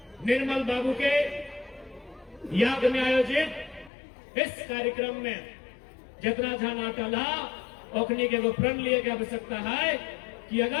निर्मल बाबू के याद में आयोजित इस कार्यक्रम में जितना ध्यान अटल ओखनी के प्रण लिए की आवश्यकता है कि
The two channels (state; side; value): drops out; right; at 3.9 s